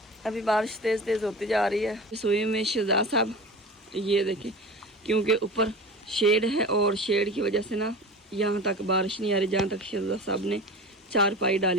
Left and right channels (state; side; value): normal; both; correlation 0.33